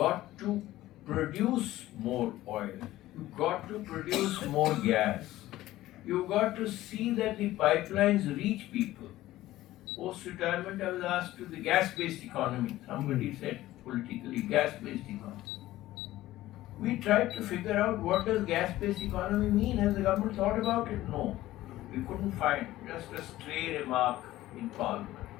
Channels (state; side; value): quieter; right; 15.7 dB